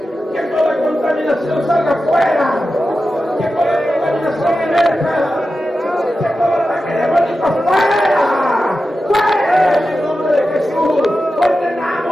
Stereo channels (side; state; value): both; normal; correlation 0.92